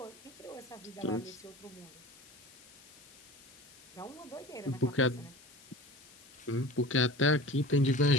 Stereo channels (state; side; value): noise; left; hiss, 22 dB below the sound